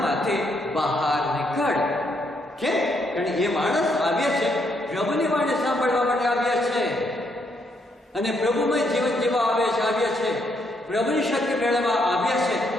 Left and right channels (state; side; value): normal; both; correlation 0.75